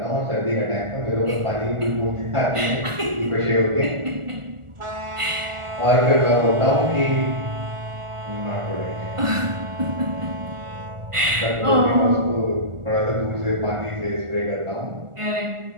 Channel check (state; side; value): late; left; 1.4 ms